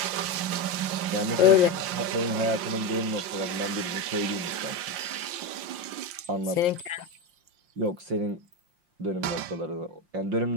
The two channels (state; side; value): late; left; 5.7 ms